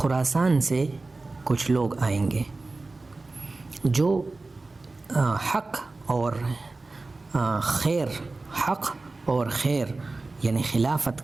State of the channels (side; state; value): left; quieter; 3.4 dB